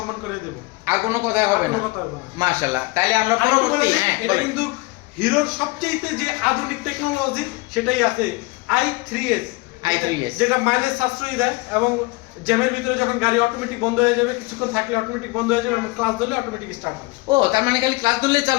করে দেব, আর কোনো কথা হবে না। মাশাআল্লাহ। তাইলে আমরা পরবর্তী, এটা কিন্তু হিরোর সবচেয়ে যে আধুনিক টেকনোলজি সেটাই আছে, i3s, যেটা মাইলেজ সাশ্রয়ী দেয় এবং জ্যামের ভিতরে যখন গাড়ি অটোমেটিক বন্ধ হয়ে যাবে, কিছুক্ষণ থাকলে অটোমেটিক বন্ধ হয়ে যাবে এবং ক্লাস ধরলে অটোমেটিক স্টার্ট হবে। ও, তার মানে খালি ক্লাস ধরলেই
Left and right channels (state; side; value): quieter; right; 24.4 dB